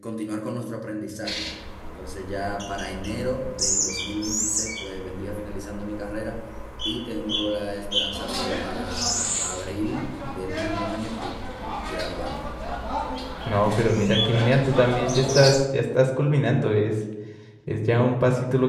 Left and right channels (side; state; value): both; identical; correlation 1.00